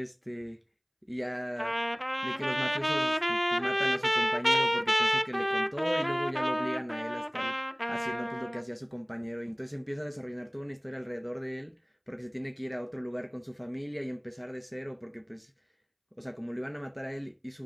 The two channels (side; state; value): both; identical; correlation 1.00